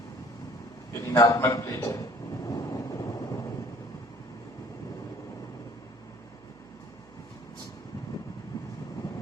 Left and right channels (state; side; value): noise; right; hum, 25 dB below the sound